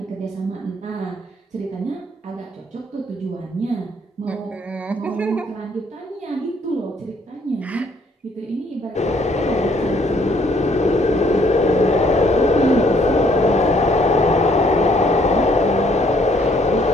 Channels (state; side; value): normal; both; correlation 0.65